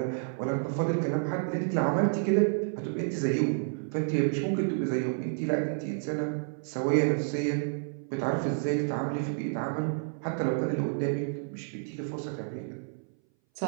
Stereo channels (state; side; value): silent; left; 58 dB below the other